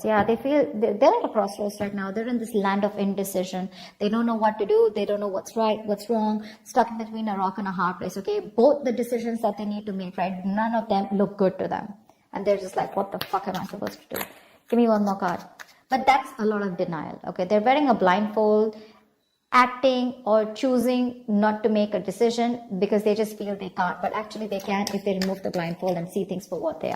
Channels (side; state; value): both; identical; correlation 1.00